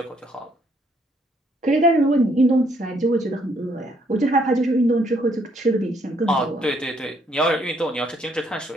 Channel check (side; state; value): both; normal; correlation 0.69